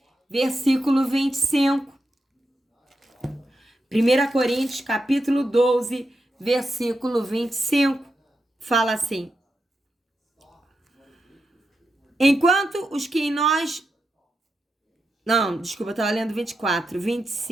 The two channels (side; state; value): both; normal; correlation 0.87